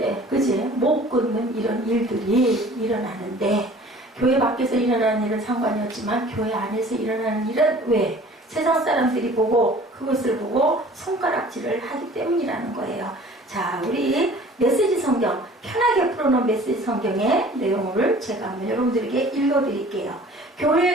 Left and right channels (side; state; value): both; normal; correlation 0.48